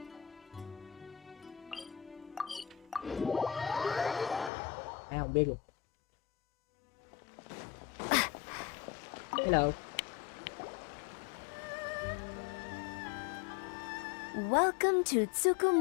Ai không biết luôn. Hello. Welcome to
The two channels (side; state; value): right; drops out; at 4.5 s